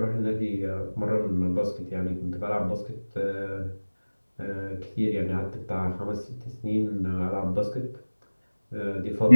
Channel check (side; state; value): both; inverted; correlation -1.00